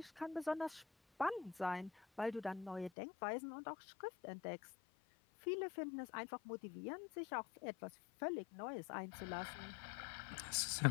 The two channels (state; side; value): drops out; right; at 2.9 s